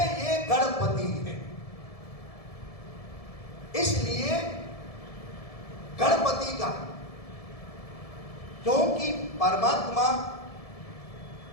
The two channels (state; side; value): late; right; 1.7 ms